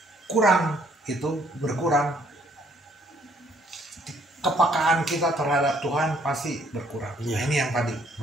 kurang itu berkurang, kepekaan kita terhadap Tuhan pasti berkurang. Nah, ini yang tadi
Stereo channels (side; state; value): both; normal; correlation 0.65